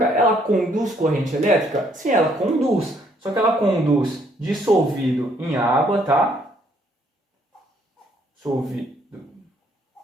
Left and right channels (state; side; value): normal; both; correlation 0.67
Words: ela conduz corrente elétrica? Sim, ela conduz, só que ela conduz dissolvido em água, tá? Dissolvido